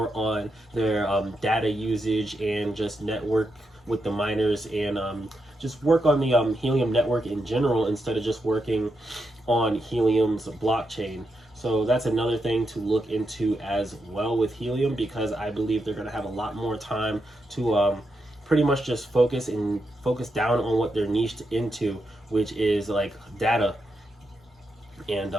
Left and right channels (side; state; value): both; normal; correlation 0.84